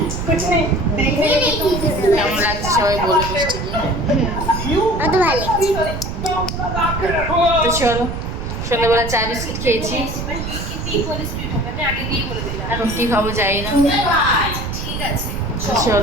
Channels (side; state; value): right; noise; rumble, 5 dB below the sound